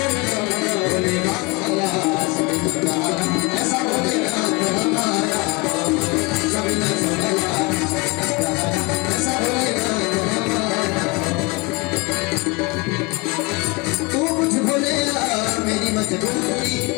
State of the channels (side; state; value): right; quieter; 26.8 dB